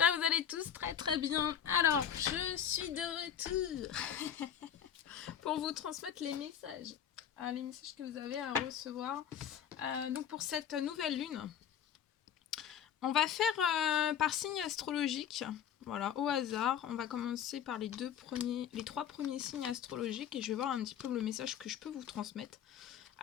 que vous allez tous très très bien. Alors, je suis de retour pour vous transmettre les messages que vous avez à recevoir. Donc pour cette nouvelle lune, on va faire par signe astrologique, voilà, au hasard. On va commencer par les trois premiers signes astrologiques et je vais voir un petit peu le message que je peux vous transmettre.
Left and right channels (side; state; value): right; quieter; 9.0 dB